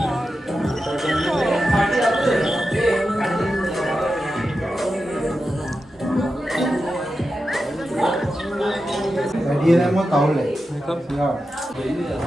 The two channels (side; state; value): both; normal; correlation 0.90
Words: Dia nak mau tahu leh. Ya.